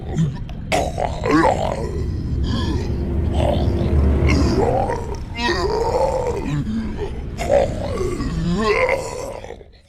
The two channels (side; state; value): both; identical; correlation 1.00